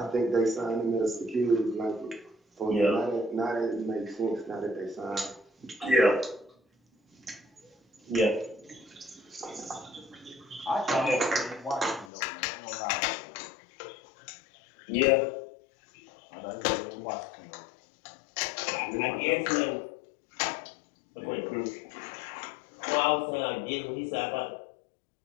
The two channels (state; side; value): drops out; right; at 12.1 s